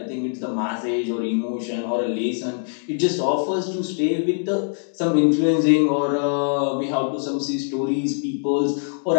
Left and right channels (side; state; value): right; silent; 64 dB below the other